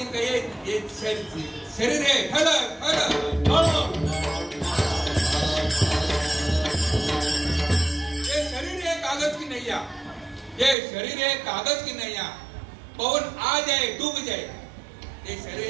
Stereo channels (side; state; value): left; drops out; at 10.8 s